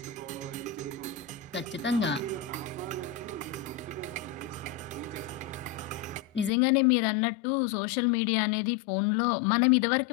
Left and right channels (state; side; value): drops out; right; at 6.5 s